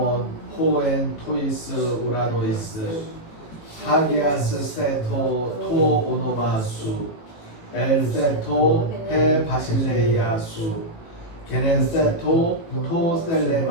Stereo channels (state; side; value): late; right; 19 ms